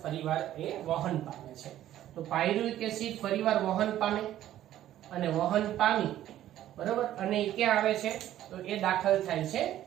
ફરીવાર એ વહન પામે છે. તો પાયરુવિક એસિડ ફરીવાર વહન પામે અને વહન પામી બરાબર અને એ ક્યાં આવે છે તો એ દાખલ થાય છે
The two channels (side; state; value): left; quieter; 12.7 dB